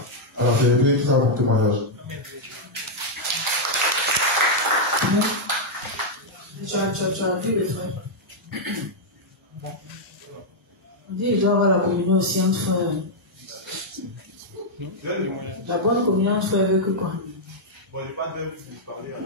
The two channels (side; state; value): both; normal; correlation -0.04